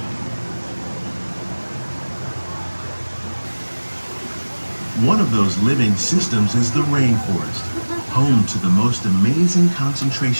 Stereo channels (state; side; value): inverted; both; correlation -1.00